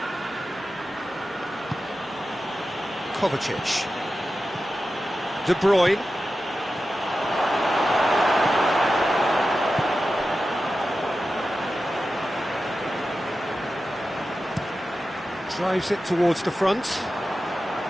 Kovacic. De Bruyne. Drives it towards the front.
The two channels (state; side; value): normal; both; correlation 0.93